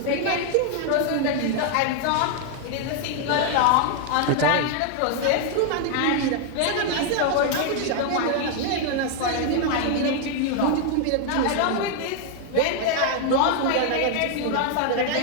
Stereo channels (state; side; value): different; both; correlation 0.00